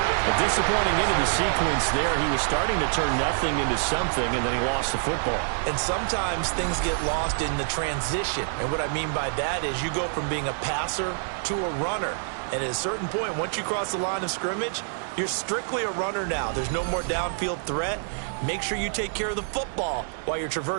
A disappointing end of the sequence there. He was starting to turn nothing into something, and then he lost the football. And sometimes things get lost in the transition. And what I mean by that is you go from being a passer to a runner. And at a certain point, once you cross the line of scrimmage, you're strictly a runner now. There's no more downfield threat. Make sure you take care of the football while you're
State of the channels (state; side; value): silent; left; digital silence